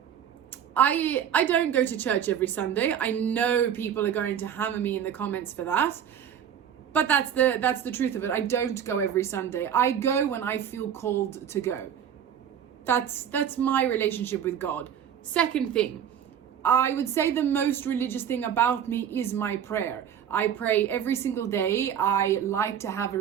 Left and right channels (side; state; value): left; quieter; 9.0 dB